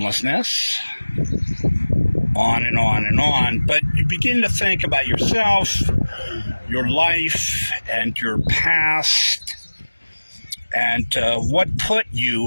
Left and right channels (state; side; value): inverted; both; correlation -1.00